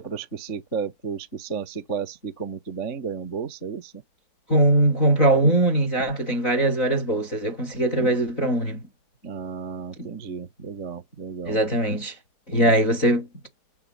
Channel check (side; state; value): right; late; 4.0 ms